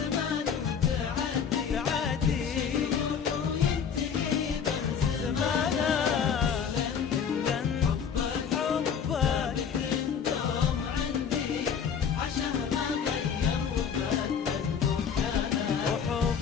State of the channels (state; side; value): quieter; right; 7.1 dB